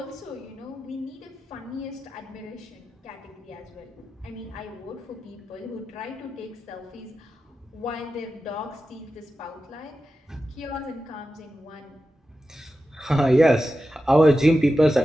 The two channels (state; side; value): normal; both; correlation 0.92